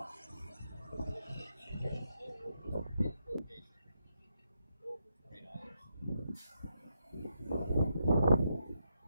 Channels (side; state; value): both; inverted; correlation -0.82